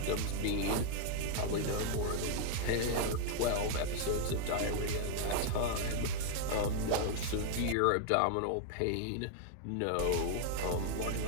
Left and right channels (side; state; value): both; different; correlation -0.01